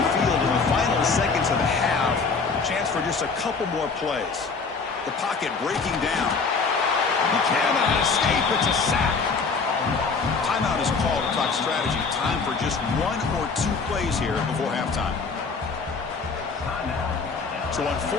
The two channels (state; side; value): quieter; right; 4.7 dB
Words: field in the final seconds of the half. Chance for just a couple more plays. The pocket breaking down. He cannot escape. It's a sack. Timeout is called to talk strategy. Time for just 1 or 2 plays here before halftime. So on